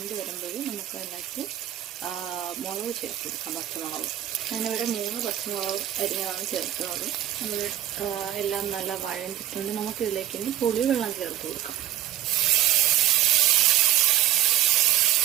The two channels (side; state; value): left; quieter; 12.9 dB